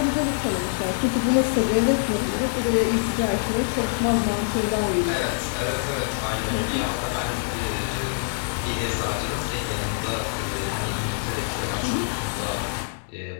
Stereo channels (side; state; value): right; silent; 62 dB below the other